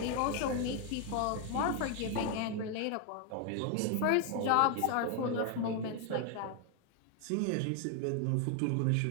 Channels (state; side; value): different; both; correlation 0.01